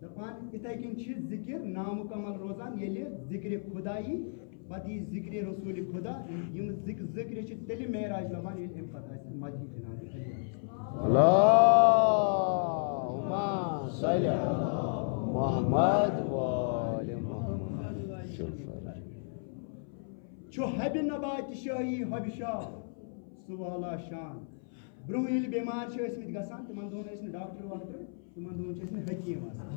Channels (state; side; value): silent; right; 56 dB below the other